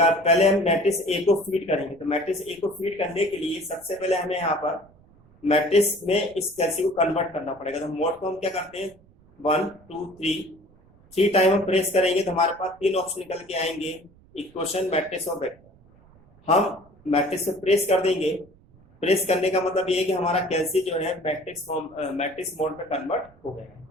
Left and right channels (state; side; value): noise; right; rumble, 28 dB below the sound